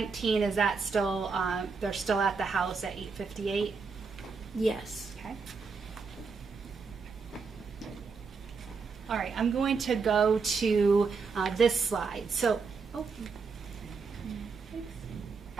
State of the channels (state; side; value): quieter; left; 4.9 dB